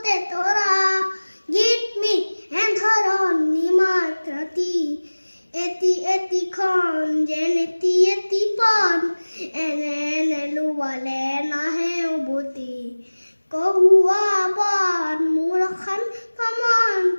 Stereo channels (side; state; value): both; inverted; correlation -1.00